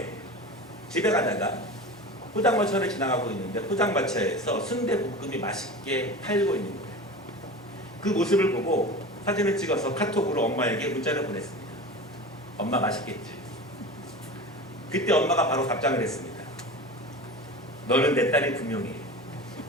집에 가다가 포장마차를 지나가고 있는데, 포장마차에서 순대볶음이 맛있게 팔고 있는 거예요. 그 모습을 보고 사진을 찍어서 카톡으로 엄마에게 문자를 보냈습니다. 엄마 맛있겠지? 그때 엄마가 바로 답장을 했습니다. 너는 내 딸이 분명히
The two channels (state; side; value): normal; both; correlation 0.32